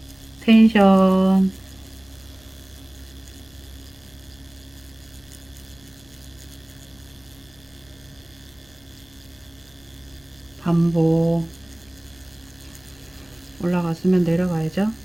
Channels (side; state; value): left; noise; rumble, 29 dB below the sound